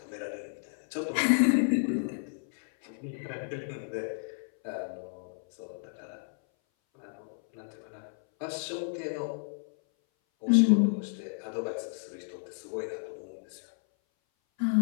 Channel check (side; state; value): right; silent; 57 dB below the other